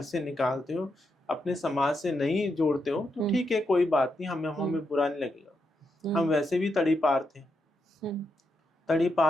से निकालते हो, अपने समाज से नहीं जोड़ते हो, तो ठीक है, कोई बात नहीं, हमें बुरा नहीं लगेगा। हम वैसे भी तड़ी पार थे, तड़ी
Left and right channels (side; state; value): both; normal; correlation 0.83